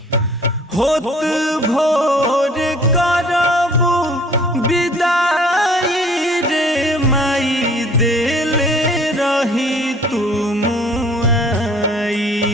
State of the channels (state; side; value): normal; both; correlation 0.54